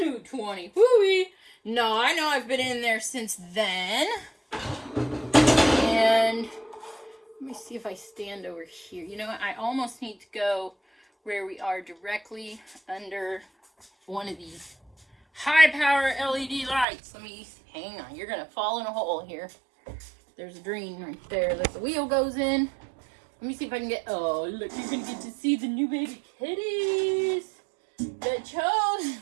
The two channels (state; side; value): drops out; left; at 16.9 s